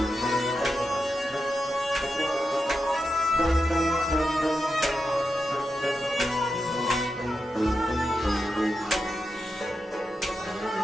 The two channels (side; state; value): both; normal; correlation 0.88